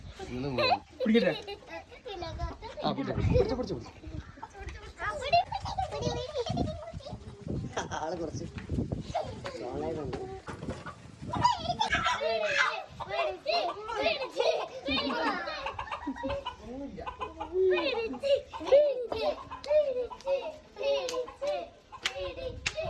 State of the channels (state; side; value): identical; both; correlation 1.00